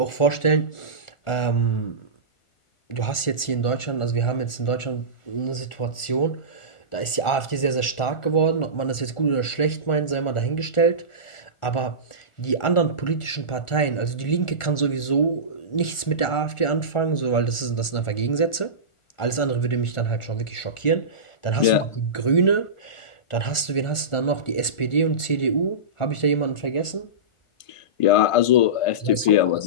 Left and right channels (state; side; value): late; right; 1.4 ms